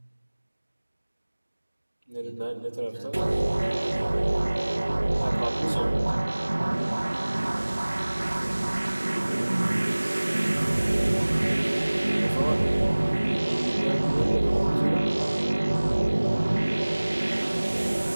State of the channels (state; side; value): inverted; both; correlation -1.00